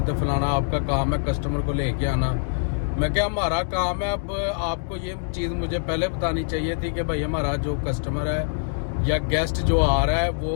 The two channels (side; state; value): right; silent; digital silence